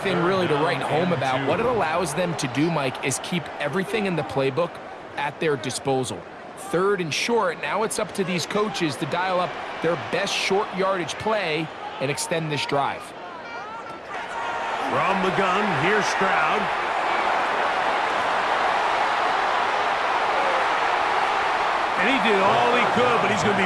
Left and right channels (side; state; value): both; identical; correlation 1.00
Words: really to write home about, what it allows them to do, Mike, is keep everything in the playbook at their disposal. 3rd and short, now it's up to these coaches to dial up their best short yardage play and extend this drive. From the gun, here's Stroud. And he did all he could, but he's going to